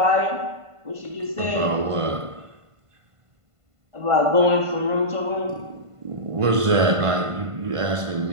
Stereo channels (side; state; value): left; late; 1.5 ms